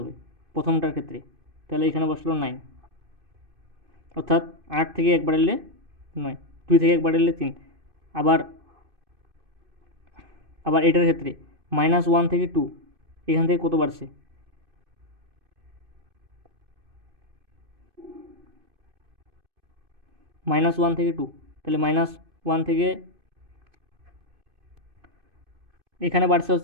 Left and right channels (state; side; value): late; left; 2.6 ms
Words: প্রথমটার ক্ষেত্রে। তাহলে এখানে বসলো 9। অর্থাৎ 8 থেকে 1 বাড়ালে 9, 2 থেকে 1 বাড়ালে 3। আবার আবার এটার ক্ষেত্রে -1 থেকে 2, এখান থেকে কত বাড়ছে? -1 থেকে 2, তাহলে -1 থেকে এখানে বাড়ছে